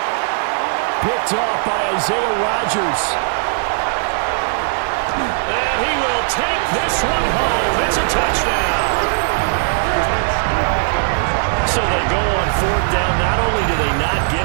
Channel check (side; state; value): left; silent; digital silence